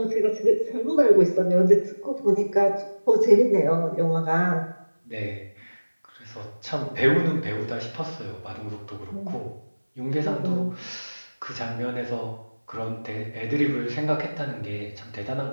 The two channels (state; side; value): inverted; both; correlation -1.00